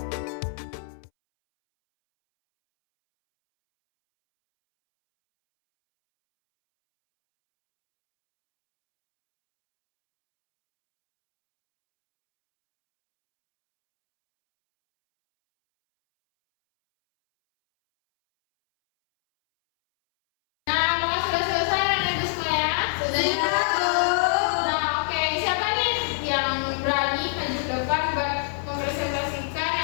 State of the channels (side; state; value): right; silent; 62 dB below the other